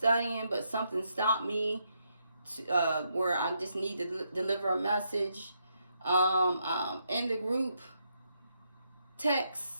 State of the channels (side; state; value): both; inverted; correlation -0.79